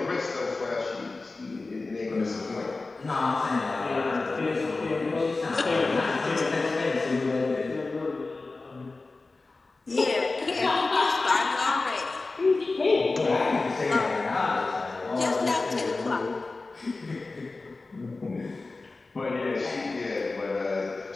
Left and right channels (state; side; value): quieter; right; 3.6 dB